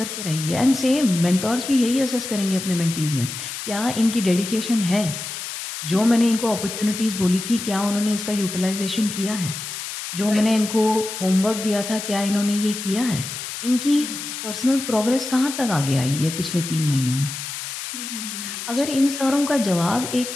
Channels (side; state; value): left; noise; hiss, 7 dB below the sound